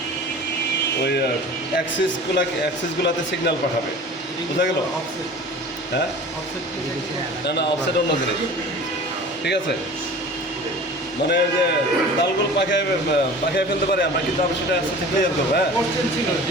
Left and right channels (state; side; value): normal; both; correlation 0.40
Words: ওই অ্যাক্সেসগুলোতে সিগন্যাল পাঠাবে। বোঝা গেল? হ্যাঁ, না অফসেট অন্য জিনিস। ঠিক আছে? মানে যে তালগুলো পাখিয়ে ফেলতে পারি আমরা, কিন্তু আমি সেটা আস্তে ক্লিয়ার করবো। হ্যাঁ, কোশ্চেন ছিল